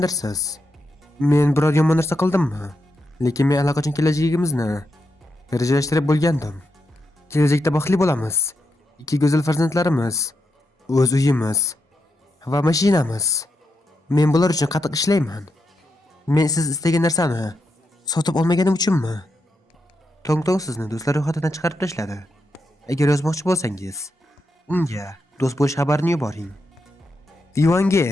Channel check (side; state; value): both; normal; correlation 0.84